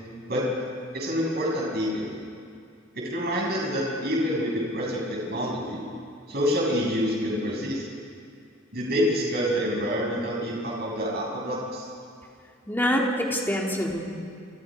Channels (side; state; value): both; normal; correlation 0.48